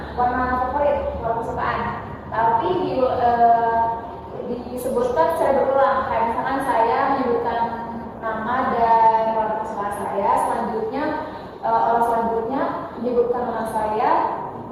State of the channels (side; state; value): both; identical; correlation 1.00